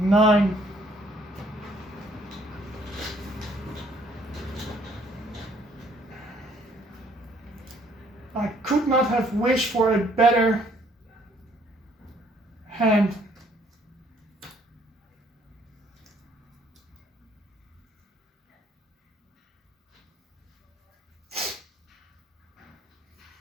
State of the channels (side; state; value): both; normal; correlation 0.63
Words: I could not have wished for a better hand.